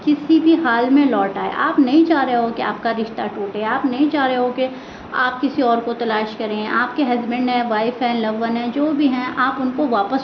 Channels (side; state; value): both; identical; correlation 1.00